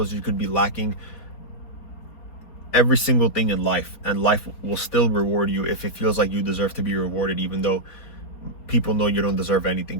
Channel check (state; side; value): late; right; 4.3 ms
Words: You could be lacking every single thing in life, and life will still reward you if it feels like you deserve to be rewarded, even though people know you don't deserve anything